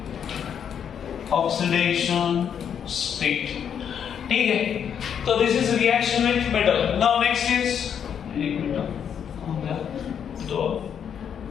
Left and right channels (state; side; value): quieter; right; 8.2 dB